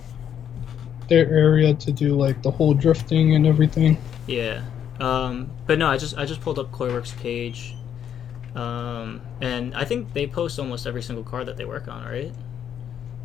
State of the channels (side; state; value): right; quieter; 9.1 dB